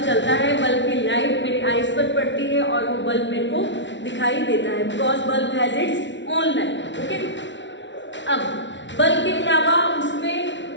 चलता है, बल्ब की लाइट मेरी आईज पर पड़ती है और वो बल्ब मेरे को दिखाई देता है because bulb has its own light. Okay, अब बल्ब के अलावा उसमें,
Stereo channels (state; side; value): late; right; 0.54 ms